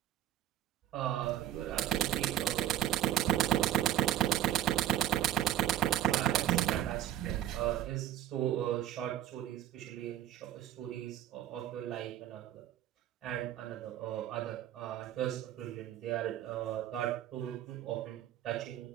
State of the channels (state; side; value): quieter; left; 12.3 dB